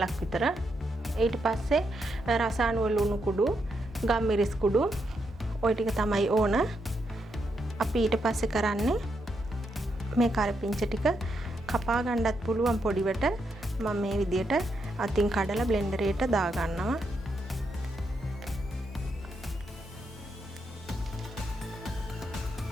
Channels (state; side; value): normal; both; correlation 0.81